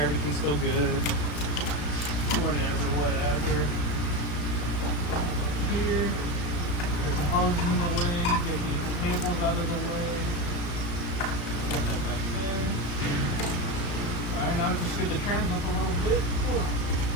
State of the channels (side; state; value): right; late; 34 ms